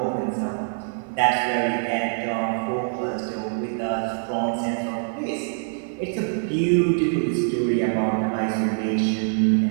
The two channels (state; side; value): silent; left; 62 dB below the other